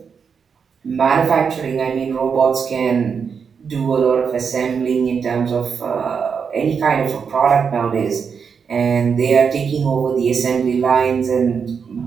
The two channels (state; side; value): quieter; left; 6.3 dB